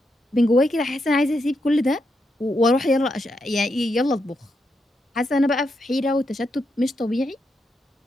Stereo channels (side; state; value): both; normal; correlation 0.83